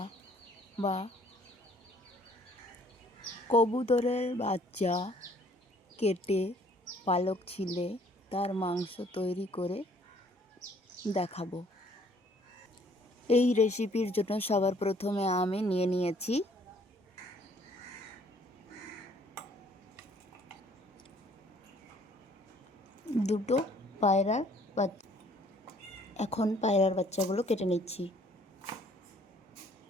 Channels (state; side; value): normal; both; correlation 0.60